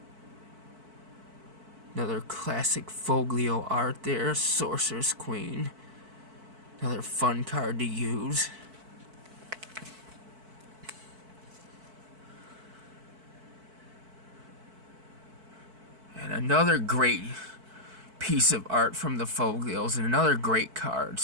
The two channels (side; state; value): left; late; 4.5 ms